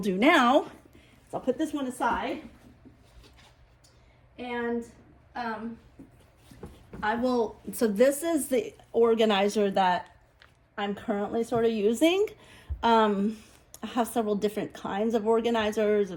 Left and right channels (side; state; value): both; identical; correlation 1.00